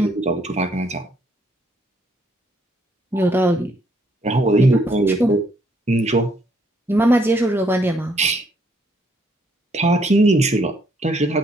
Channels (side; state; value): both; normal; correlation 0.69